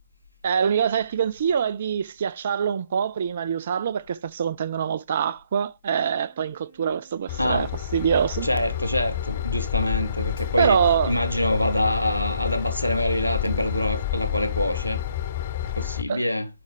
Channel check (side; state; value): both; inverted; correlation -0.69